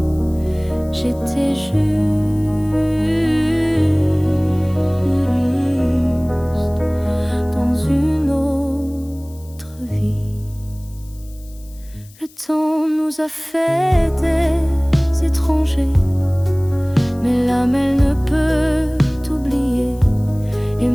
J'étais juste dans une autre vie. Le temps nous a fait des étrangers, mais l'âme elle ne peut t'oublier. Et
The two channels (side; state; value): left; noise; hiss, 25 dB below the sound